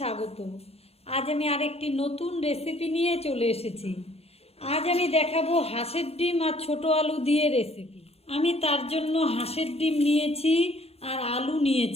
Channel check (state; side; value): late; right; 0.29 ms